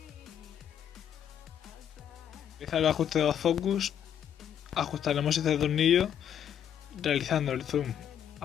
Realizar el ajuste de los focus. Ajustaremos este tornillo realizando el zoom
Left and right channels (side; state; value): right; quieter; 9.3 dB